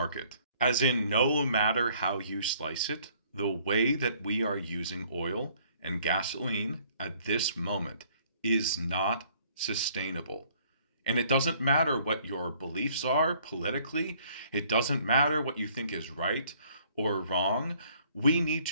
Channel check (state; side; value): inverted; both; correlation -0.61